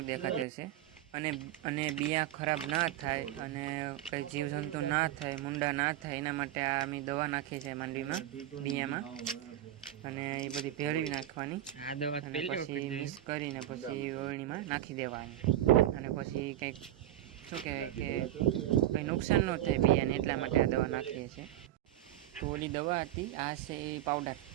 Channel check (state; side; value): quieter; left; 13.2 dB